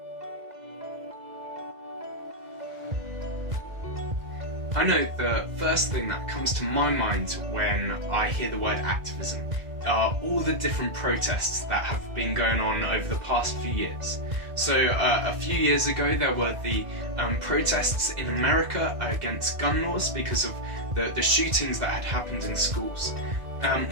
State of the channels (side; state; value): left; late; 2.1 ms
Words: I know the first thing that comes to my mind when I hear the word activism are all the different protests that have been going on over the past few years. So a few years ago there were the protests in America against gun laws because of the shootings that had happened in schools.